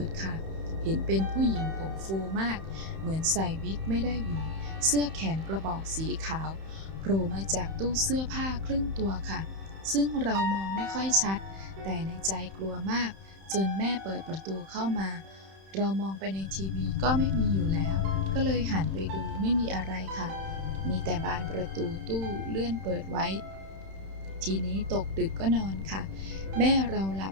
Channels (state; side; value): late; left; 31 ms